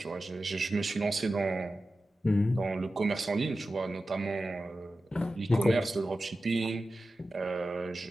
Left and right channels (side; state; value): both; normal; correlation 0.93